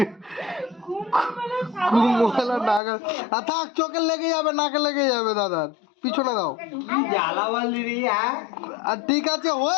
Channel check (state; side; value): drops out; right; at 2.8 s